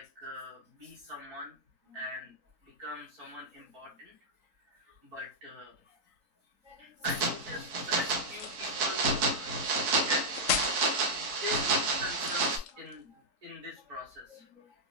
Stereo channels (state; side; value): late; left; 4.5 ms